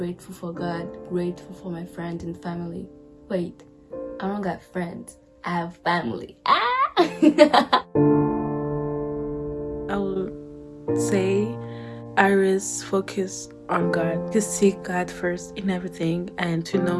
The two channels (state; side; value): identical; both; correlation 1.00